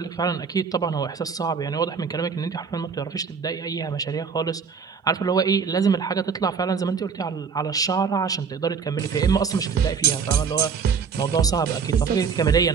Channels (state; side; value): quieter; left; 5.9 dB